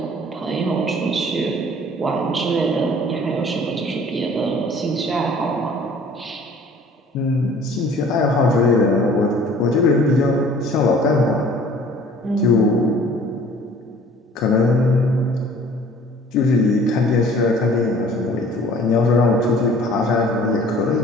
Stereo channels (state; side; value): normal; both; correlation 0.51